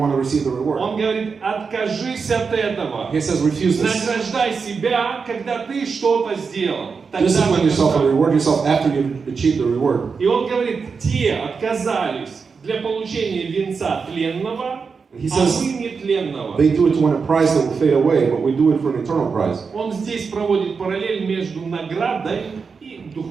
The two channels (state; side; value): quieter; left; 5.3 dB